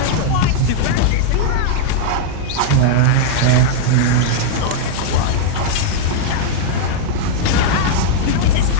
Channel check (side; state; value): both; different; correlation -0.01